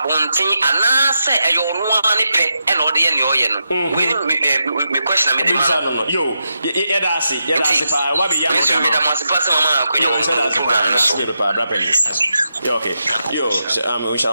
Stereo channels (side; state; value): both; inverted; correlation -0.86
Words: anase eyo no ani pe e no de ye ne oye no me question me the man yo ye da ase pa wa be ya no me da mas pa se mama akonya wo program so yo okay yo we